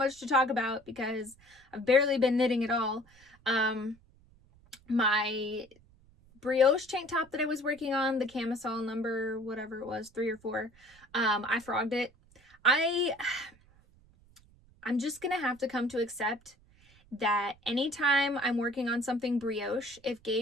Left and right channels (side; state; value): right; noise; rumble, 28 dB below the sound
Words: to talk about because I've barely been knitting at all. My brioche tank top that I was working on, the camisole number, whatever it was, 3 or 4, I frogged it. I'm just gonna have to come to accept that anytime I'm working on something brioche, if